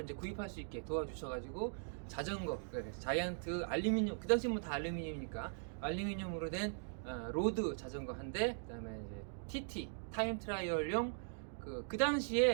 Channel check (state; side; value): silent; left; digital silence